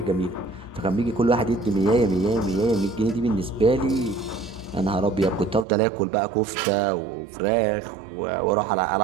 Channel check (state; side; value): drops out; left; at 5.7 s